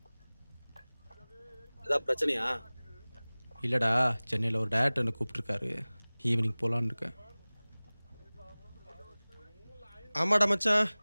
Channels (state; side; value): inverted; both; correlation -1.00